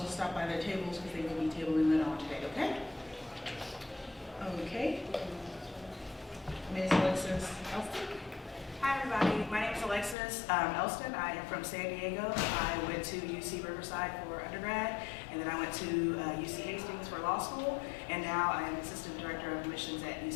stop by their tables because they will be tabling later on today, okay? Okay. Ms. Alexis Elston. Hi everybody, my name is Alexis Elston. I am from San Diego. I went to UC Riverside for undergrad, and then I went to UC Hastings for law school, and now I am Assistant Director of Admissions at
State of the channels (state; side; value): drops out; right; at 10.2 s